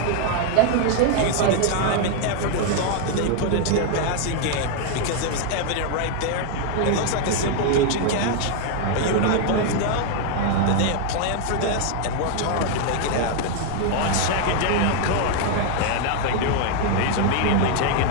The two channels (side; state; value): both; different; correlation 0.00